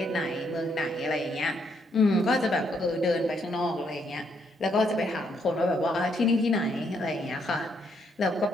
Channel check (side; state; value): both; normal; correlation 0.74